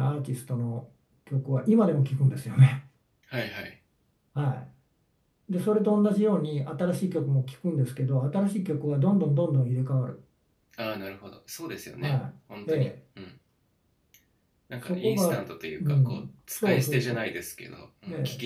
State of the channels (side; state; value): both; identical; correlation 1.00